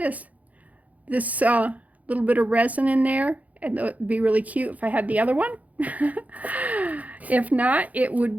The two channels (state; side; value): late; left; 0.074 ms